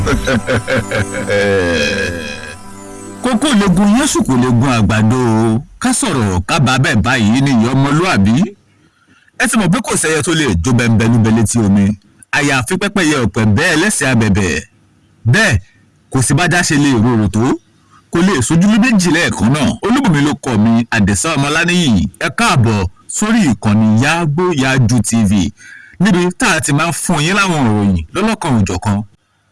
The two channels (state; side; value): identical; both; correlation 1.00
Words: Kókó legun Yésù kò lè gun àgbàdo ká sọ̀rọ̀ ká bá bẹ́ẹ̀ báyìí ní ìyá ọmọlúàbí. Ẹ ti mọ̀ pé kò sẹ́yẹ tó lè jó bẹ́ńbẹ́lúbẹ́ létí omi. Àyàfi pẹ́pẹ́yẹ ọ̀pẹ̀ bẹ́ẹ̀ lẹ́sẹ̀ abẹ̀bẹ̀. Bẹ́ẹ̀ kò sí bájá ṣe lè rorò tó. Kò lè sojú méjì lẹ́ẹ̀kan náà. Olúbùnmi ló kọ mi Àdẹ̀sá Ọmọláníyì. Ẹ káàbọ̀ sórí ìkànnì Yàgbéyàájú TV níbi tá a ti máa ń fún yín láwọn ìròyìn lọ́lọ́kan òjọ̀kan.